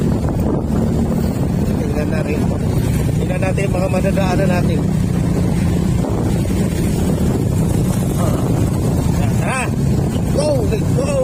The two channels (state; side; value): identical; both; correlation 1.00